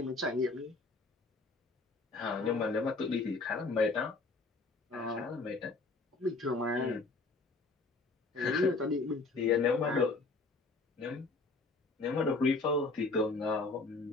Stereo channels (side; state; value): right; quieter; 3.6 dB